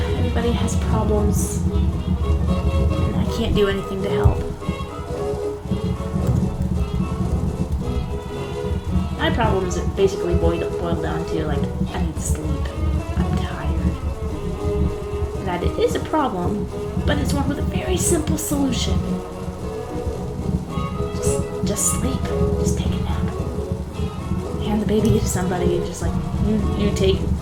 Everybody has problems, and I can't do anything to help. My problems are basically boiled down to, like, I need sleep. I'm tired. That it is a problem, but it's one with a very simple solution. Just sleep. Just take a nap. Hand the baby to somebody and just like, you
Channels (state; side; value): identical; both; correlation 1.00